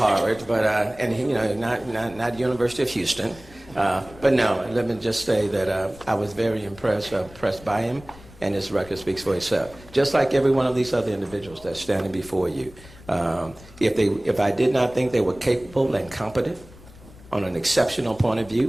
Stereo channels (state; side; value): noise; left; rumble, 21 dB below the sound